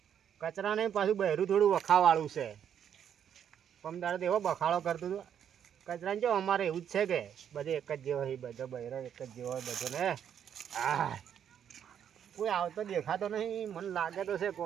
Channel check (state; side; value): quieter; left; 8.9 dB